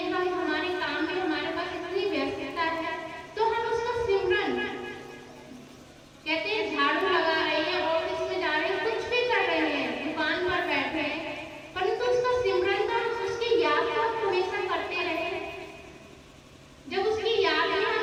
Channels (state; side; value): identical; both; correlation 1.00